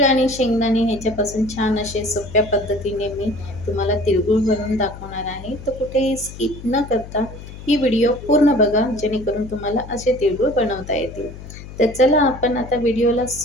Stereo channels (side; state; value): left; noise; hum, 14 dB below the sound